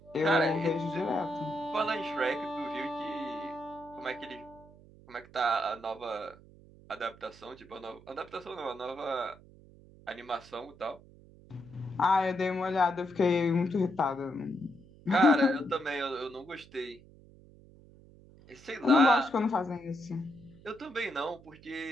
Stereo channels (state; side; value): noise; right; hum, 23 dB below the sound